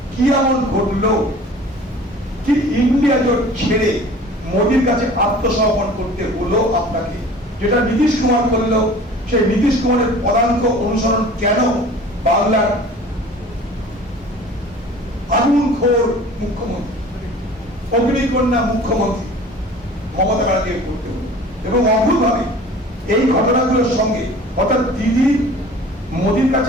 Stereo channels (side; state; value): both; normal; correlation 0.44